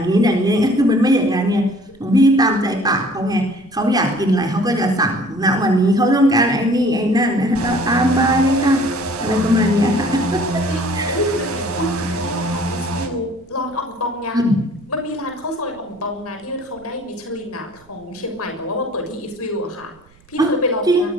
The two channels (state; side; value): noise; right; rumble, 29 dB below the sound